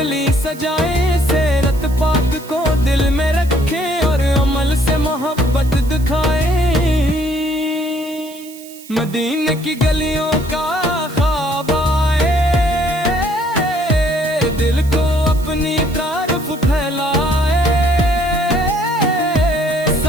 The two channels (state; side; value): noise; right; hiss, 19 dB below the sound